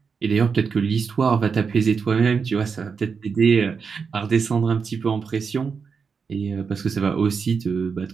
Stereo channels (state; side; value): quieter; left; 5.6 dB